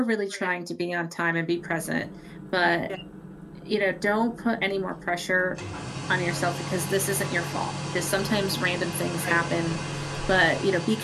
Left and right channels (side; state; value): both; identical; correlation 1.00